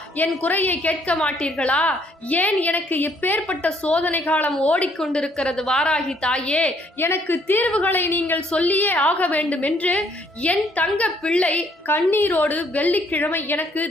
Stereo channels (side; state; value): both; normal; correlation 0.67